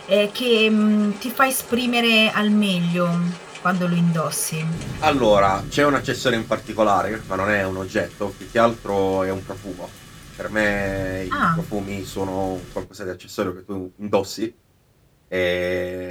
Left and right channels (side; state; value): both; identical; correlation 1.00